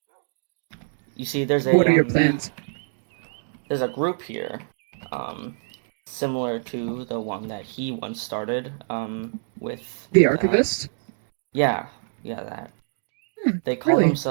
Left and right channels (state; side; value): silent; left; digital silence